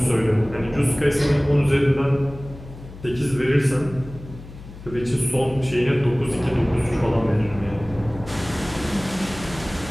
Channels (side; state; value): left; noise; hum, 16 dB below the sound